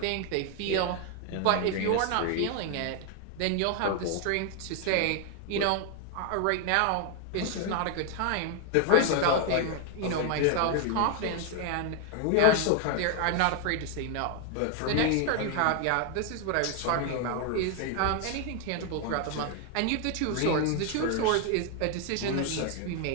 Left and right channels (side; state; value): both; different; correlation 0.01